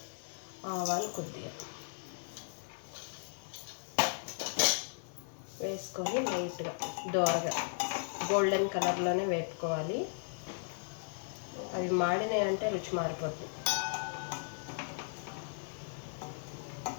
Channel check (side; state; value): right; silent; 54 dB below the other